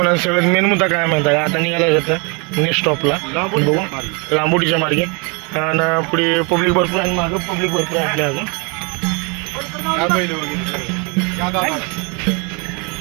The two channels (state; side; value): quieter; left; 32.0 dB